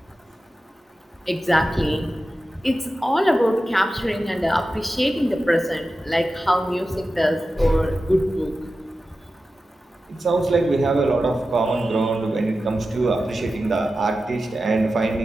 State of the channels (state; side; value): normal; both; correlation 0.93